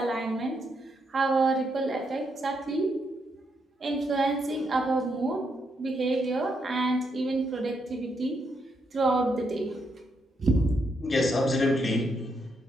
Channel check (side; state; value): both; normal; correlation 0.79